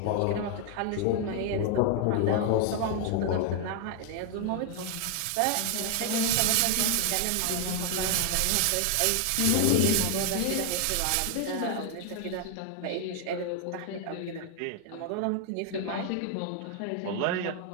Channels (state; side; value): different; both; correlation 0.00